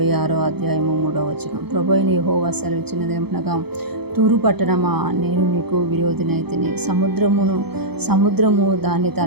అధ్యాయము 3వ వచనం. ప్రభువైన యెహోవా సెలవిచ్చినదేమనగా, తూరు పట్టణమా, నేను నీకు విరోధినైతిని. సముద్రము దాని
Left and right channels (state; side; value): late; left; 0.97 ms